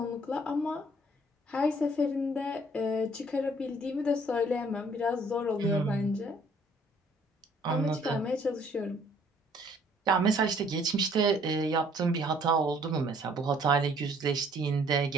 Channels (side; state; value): both; normal; correlation 0.60